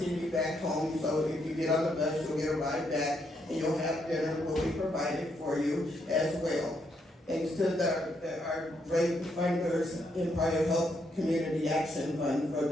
you back home. So if you get on the bus, you'll get a ride back, and you'll have dinner will be provided for you as well. Thanks to our great funders, Empire Health Community Action Fund for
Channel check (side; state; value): both; normal; correlation 0.77